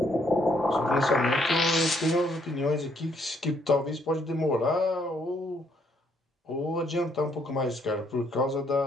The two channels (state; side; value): normal; both; correlation 0.70